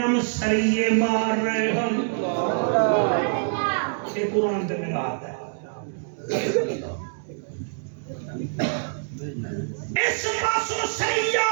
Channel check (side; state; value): left; silent; digital silence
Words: سریے مار رہے ہن یہ قرآن تے میرا آتا ہے اس پاسوں سریہ